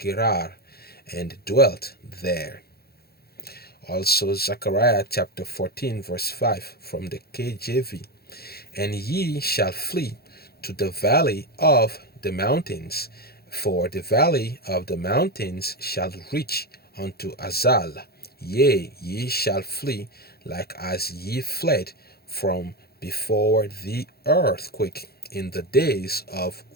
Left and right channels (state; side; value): late; right; 0.46 ms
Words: and dwelt there." Also Zechariah chapter 14 verse 5 from the KJV. "And ye shall flee to the valley of the mountains, for the valley of the mountains shall reach unto Azal. Yea, ye shall flee like as ye fled from before the earthquake in the days of